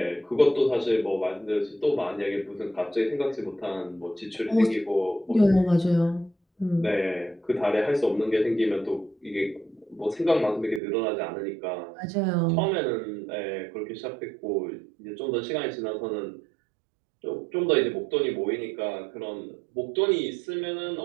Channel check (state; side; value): drops out; left; at 10.8 s